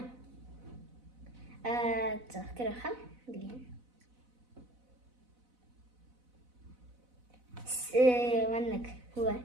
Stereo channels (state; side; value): late; left; 4.0 ms